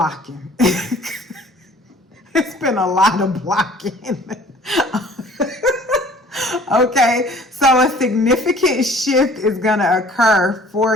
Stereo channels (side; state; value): both; normal; correlation 0.52